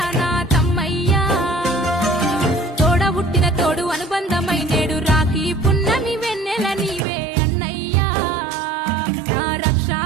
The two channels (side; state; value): left; drops out; at 7.1 s